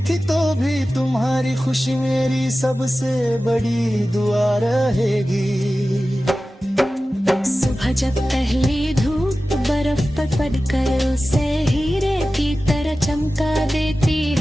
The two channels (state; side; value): normal; both; correlation 0.95